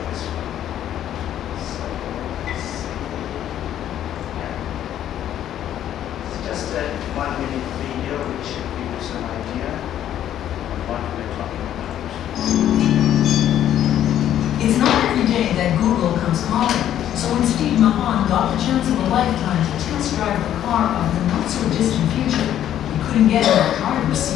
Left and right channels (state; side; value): quieter; right; 11.1 dB